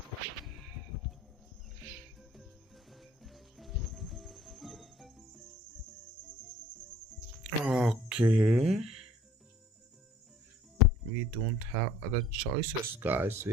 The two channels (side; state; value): both; normal; correlation 0.54